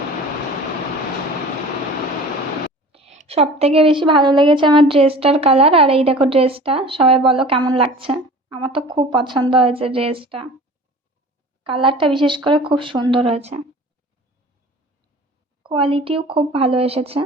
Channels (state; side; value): normal; both; correlation 0.42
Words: সব থেকে বেশি ভালো লেগেছে আমার ড্রেসটার কালার। আর এই দেখো ড্রেসটা, সবাই বলো কেমন লাগছে। আমার তো খুব পছন্দ হয়েছে ড্রেসটা, কালারটা বিশেষ করে খুব সুন্দর হয়েছে, কোয়ালিটিও খুব ভালো এসেছে।